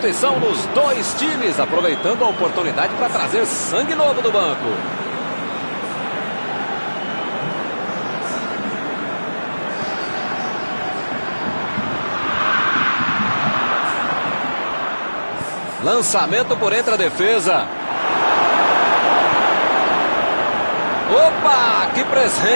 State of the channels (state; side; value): inverted; both; correlation -1.00